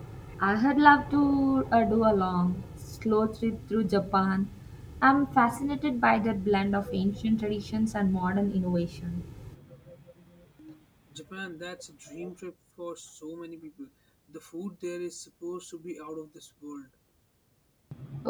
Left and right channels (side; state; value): both; identical; correlation 1.00